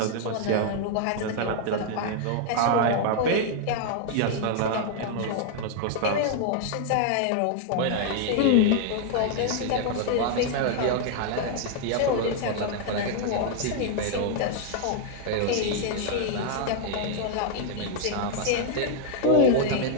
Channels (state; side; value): different; both; correlation 0.00